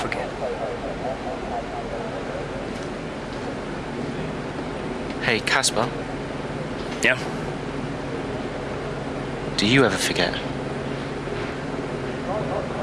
Hey, Casper. Yeah? Do you ever forget?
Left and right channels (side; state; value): both; identical; correlation 1.00